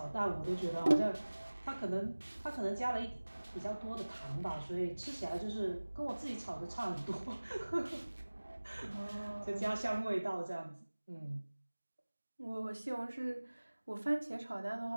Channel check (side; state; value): both; inverted; correlation -1.00